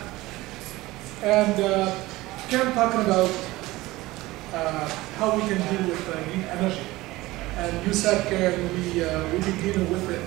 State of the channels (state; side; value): quieter; left; 19.1 dB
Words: And Karen talking about how we can deal with green energy. And you said, Karen, we've been dealing with it